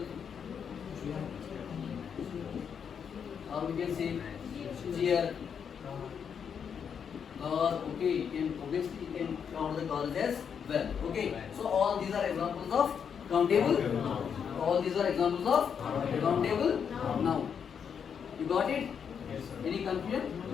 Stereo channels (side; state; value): right; quieter; 7.3 dB